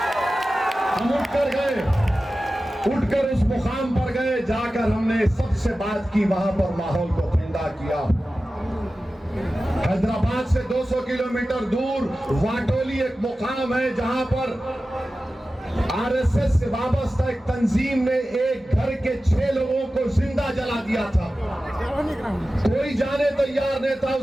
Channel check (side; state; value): both; normal; correlation 0.95